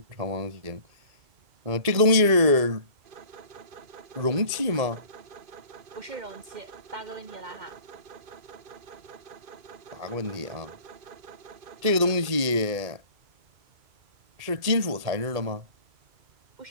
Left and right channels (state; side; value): late; left; 1.8 ms